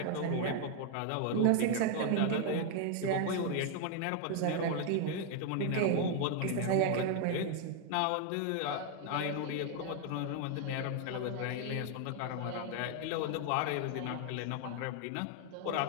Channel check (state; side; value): different; both; correlation 0.00